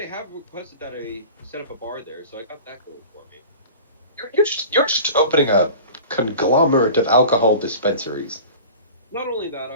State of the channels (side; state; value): both; inverted; correlation -0.39